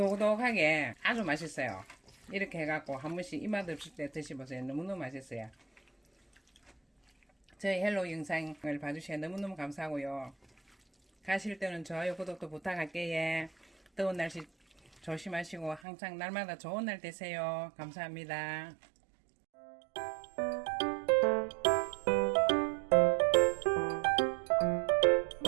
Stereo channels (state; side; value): drops out; left; at 15.8 s